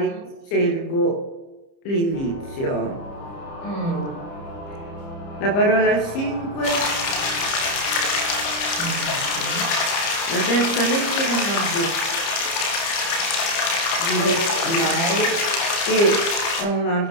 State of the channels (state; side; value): late; right; 30 ms